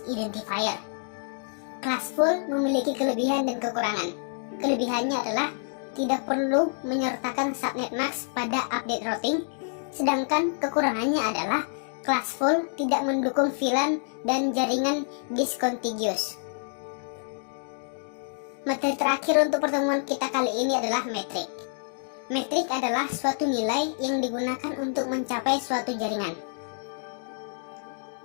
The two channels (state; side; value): silent; right; digital silence